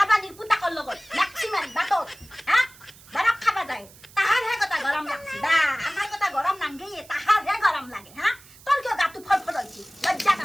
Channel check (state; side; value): noise; right; hiss, 23 dB below the sound